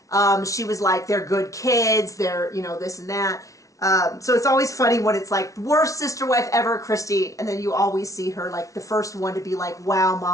she was like, they're good kids, they're, you know, this and that. So it's always funny when it's like, worst sister wife ever, Christine, and then you always see her like the first one to be like, wow,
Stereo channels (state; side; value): late; right; 0.16 ms